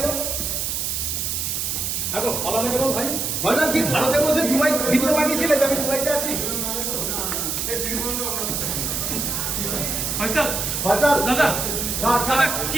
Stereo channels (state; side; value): noise; right; hiss, 1 dB below the sound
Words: দেখো পালালে কেন ভাই? ভাইজান কি ভারতে বসে দুবাই ভিডিও বানিয়েছিলে যে আমি দুবাইতে আছি? ফয়সাল ভাইজান দাদা দাদা